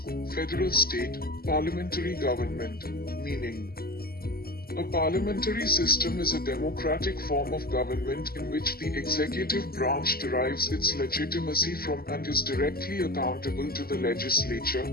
federal state, parliamentary government. Meaning. A parliamentary system is a democratic form of government in which the executive branch derives its legitimacy from and is directly accountable to the legislature,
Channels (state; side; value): late; right; 0.44 ms